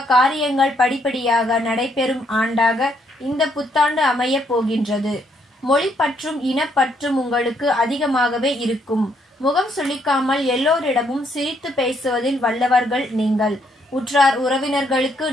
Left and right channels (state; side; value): normal; both; correlation 0.72